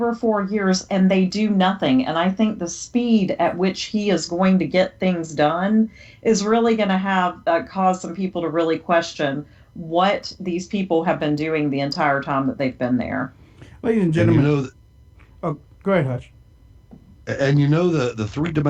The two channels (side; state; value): both; identical; correlation 1.00